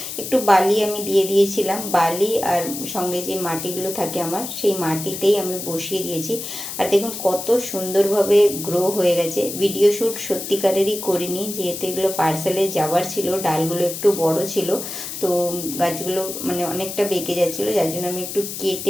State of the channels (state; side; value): noise; left; hiss, 7 dB below the sound